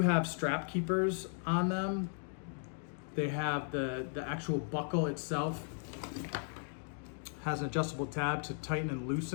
have strap keepers on them. They have the actual buckle itself has an adjustable tab to tighten and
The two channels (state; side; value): silent; right; 54 dB below the other